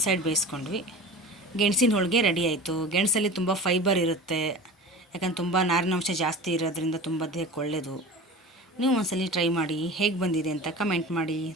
ಸೈಡ್ ಬೇಯಿಸ್ಕೊಂಡ್ವಿ. ಗೆಣಸಿನ ಹೋಳಿಗೆ ರೆಡಿ ಆಯಿತು. ಗೆಣಸಲ್ಲಿ ತುಂಬ ಫೈಬರ್ ಇರುತ್ತೆ, ಯಾಕಂದ್ರೆ ತುಂಬ ನಾರಿನಾಂಶ ಜಾಸ್ತಿ ಇರೋದ್ರಿಂದ ತುಂಬ ದೇಹಕ್ಕೆ ಒಳ್ಳೆಯದು. ನೀವು ಒಂದ್ಸಲಿ ಟ್ರೈ ಮಾಡಿ, ಹೇಗೆ ಬಂದಿದೆ ಅಂತ ಕಮೆಂಟ್ ಮಾಡಿ.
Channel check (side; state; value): both; normal; correlation 0.35